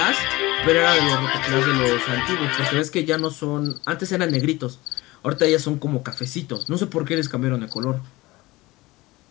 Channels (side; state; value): right; quieter; 20.4 dB